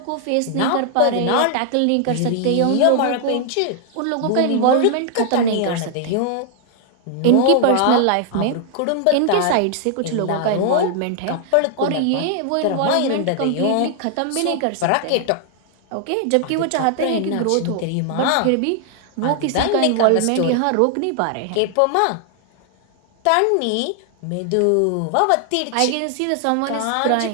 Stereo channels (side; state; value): both; different; correlation 0.00